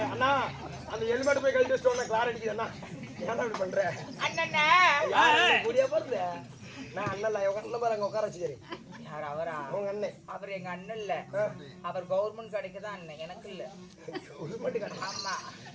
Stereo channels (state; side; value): identical; both; correlation 1.00